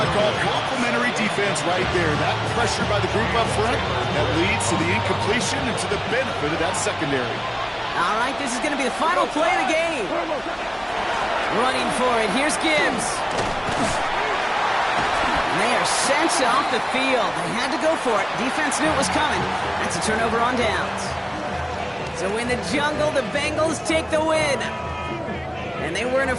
I call complimentary defense right there. That pressure by the group up front, that leads to the incompletion and to the benefit of that secondary. All right, this is going to be the final play of the game. Running for it. Here's Gibbs. And they are sent off the field. They had to go for it. Defense knew it was coming. That's a turnover on downs. So in the jungle, the Bengals take the win. And they weren't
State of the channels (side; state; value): both; identical; correlation 1.00